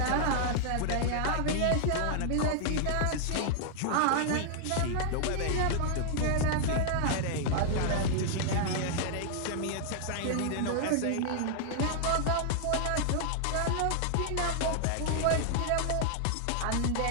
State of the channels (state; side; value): different; both; correlation -0.01